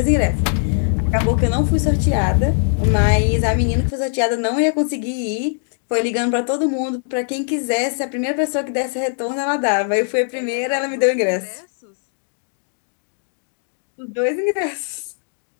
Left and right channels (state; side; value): silent; right; digital silence